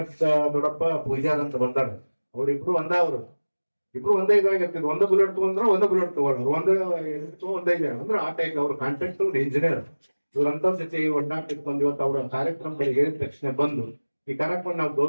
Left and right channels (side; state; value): both; inverted; correlation -1.00